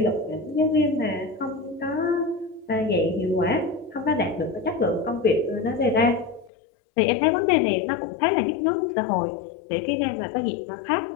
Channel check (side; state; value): right; drops out; at 6.5 s